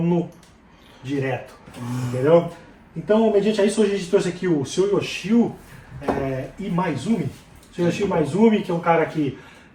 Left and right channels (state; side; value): identical; both; correlation 1.00